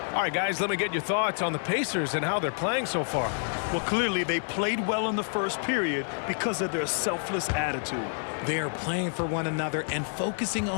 All right, guys, let me get your thoughts on the Pacers and how they're playing so far. Well, clearly they played well in the first period because of their selfless attitude. They are playing for one another and focusing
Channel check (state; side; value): silent; right; digital silence